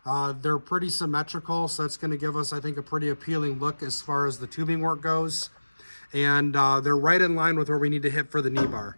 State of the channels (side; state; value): both; inverted; correlation -1.00